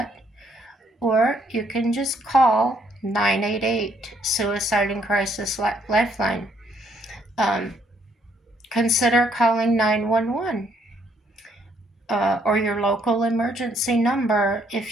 Or you can just call 988 Suicide and Crisis Lifeline. Consider calling 911 or your local emergency number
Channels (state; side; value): normal; both; correlation 0.69